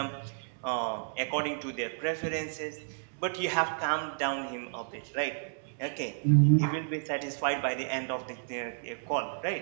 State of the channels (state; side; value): silent; left; digital silence